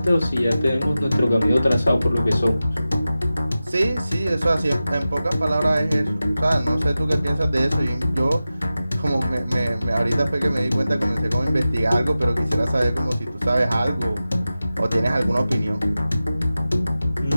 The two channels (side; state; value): both; inverted; correlation -0.94